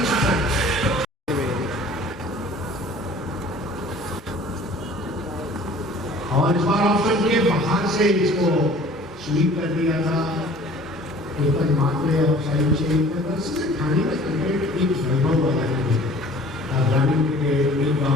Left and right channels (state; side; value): normal; both; correlation 0.49